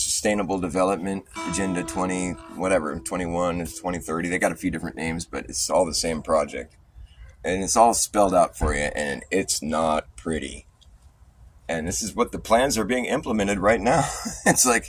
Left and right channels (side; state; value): both; identical; correlation 1.00